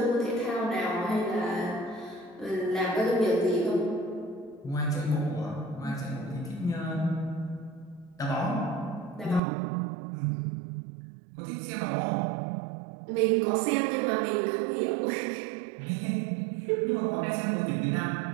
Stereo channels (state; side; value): drops out; left; at 9.4 s